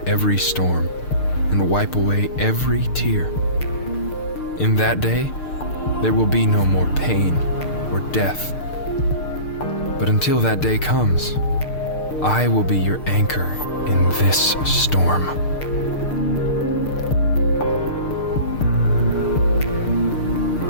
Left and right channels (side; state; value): right; late; 6.6 ms